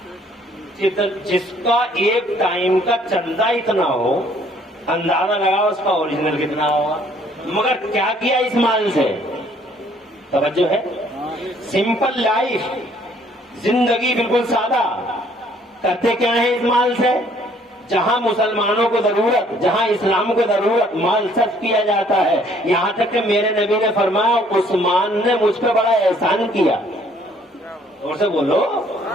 جس کا ایک ٹائم کا چندہ اتنا ہو اندازہ لگاؤ اس کا اوریجنل کتنا ہوگا. مگر کیا کیا اس مال سے؟ توجہ ہے. سمپل لائف، زندگی بالکل سادہ. کرتے کیا ہے اس مال سے؟ جہاں مسلمانوں کو ضرورت، جہاں اسلام کو ضرورت، مال صرف کیا جاتا ہے. یہاں تک کہ میرے نبی نے فرمایا عثمان نے مجھ پہ بڑا احسان کیا. زور سے بولو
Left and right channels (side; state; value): both; normal; correlation 0.61